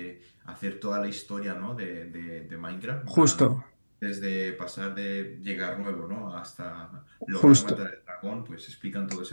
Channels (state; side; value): inverted; both; correlation -1.00